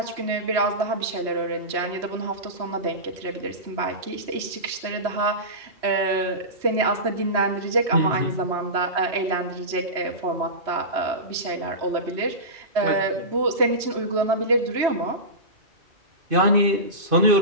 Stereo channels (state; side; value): late; left; 3.1 ms